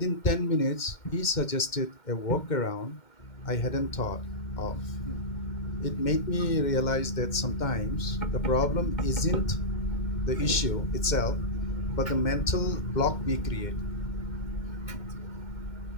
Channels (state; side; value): late; right; 2.1 ms